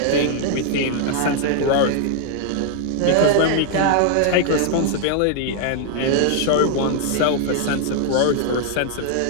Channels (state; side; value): different; both; correlation 0.00